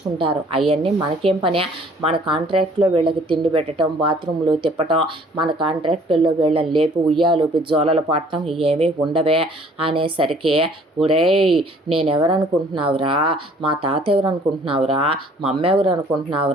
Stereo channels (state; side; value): normal; both; correlation 0.56